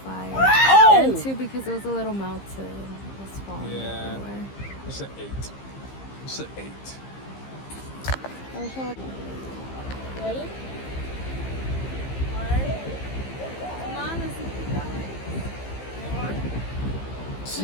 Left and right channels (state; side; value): late; right; 15 ms